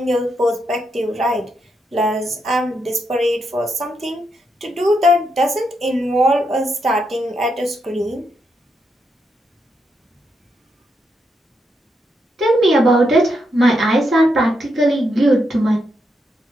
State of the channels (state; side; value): normal; both; correlation 0.81